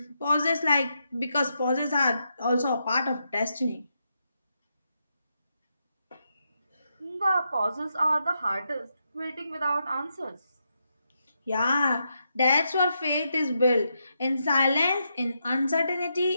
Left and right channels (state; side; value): inverted; both; correlation -0.83